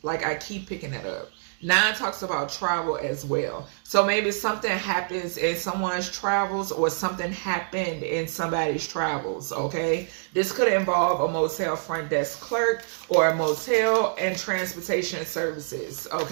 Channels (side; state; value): left; silent; digital silence